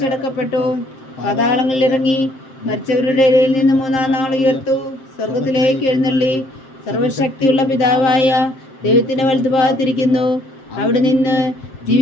പാതാളങ്ങളിൽ ഇറങ്ങി, മരിച്ചവരുടെ ഇടയിൽ നിന്ന് 3-ാം നാൾ ഉയർത്തു, സ്വർഗത്തിലേക്ക് എഴുന്നള്ളി, സർവശക്തിയുള്ള പിതാവായ ദൈവത്തിന്റെ വലതുഭാഗത്തിരിക്കുന്നു. അവിടെ നിന്ന്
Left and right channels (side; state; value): right; late; 7.6 ms